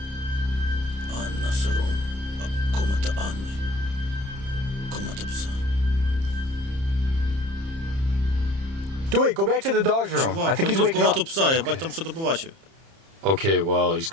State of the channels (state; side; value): late; left; 30 ms